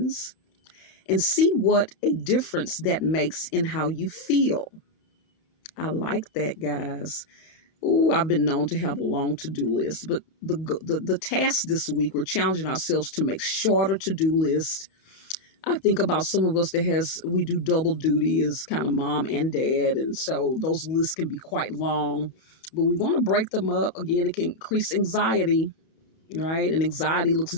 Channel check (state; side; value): late; right; 31 ms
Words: and see what a difference that makes in how you feel. I like that, guys. Ooh, I've been known to have a long to-do list, but the task this week, we're challenging ourselves to make shorter to-do lists. I think about some of us we do double duty as kind of mom and dad, and so those lists can be quite long, but we want to break them up. Again, it can increase anxiety, right? And anxiety looks